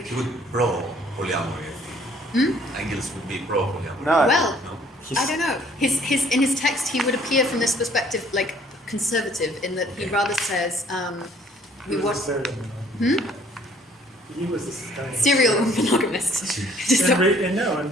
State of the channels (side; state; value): both; normal; correlation 0.59